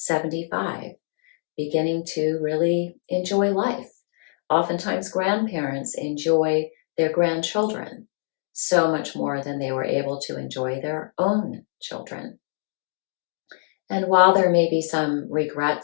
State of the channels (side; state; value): right; silent; digital silence